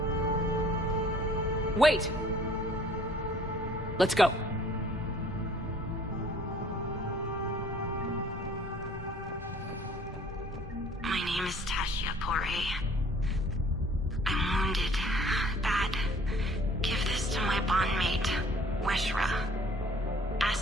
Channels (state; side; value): normal; both; correlation 0.55